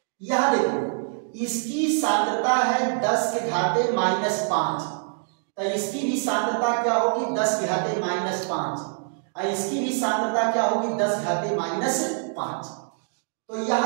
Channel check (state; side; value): silent; left; 62 dB below the other